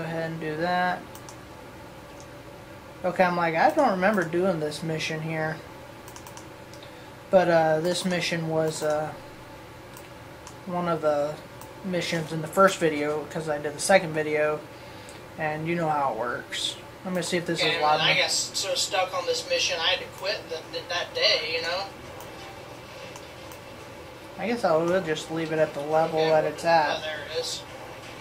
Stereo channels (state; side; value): identical; both; correlation 1.00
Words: and do that. Okay, I'm like, I don't remember doing this mission here, but this mission was one of the missions in the first video because I did the second video, and you know how it works. I'm gonna see if this is live. I got so stuck on this mission, I had to quit that day, you know. I guess I will just leave it at the level that it's at. Oh, there it is.